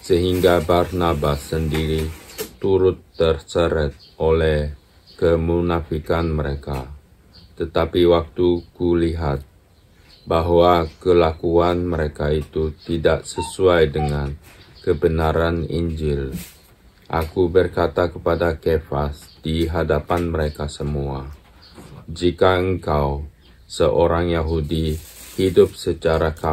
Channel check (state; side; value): identical; both; correlation 1.00